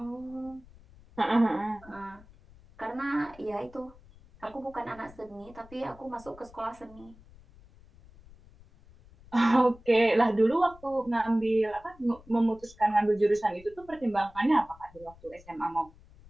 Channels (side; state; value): left; noise; rumble, 24 dB below the sound